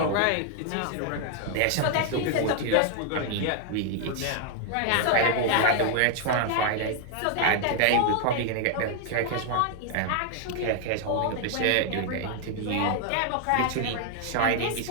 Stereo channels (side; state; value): both; different; correlation 0.00